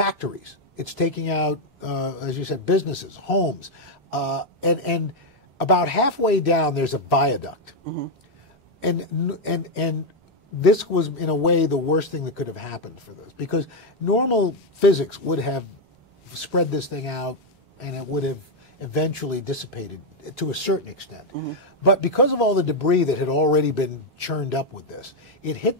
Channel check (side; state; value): both; normal; correlation 0.03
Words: It's taking out, as you said, businesses, homes, and about halfway down there's a viaduct, and this was, in a way, the worst thing that could have happened for this, because normal physics would have spread this thing out, and it would have eventually dissipated to a certain extent. But because of all the debris that had already been churned up with this, it hit